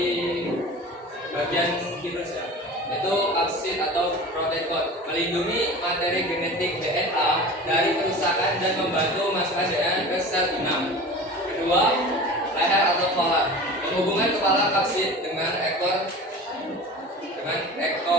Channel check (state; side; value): normal; both; correlation 0.36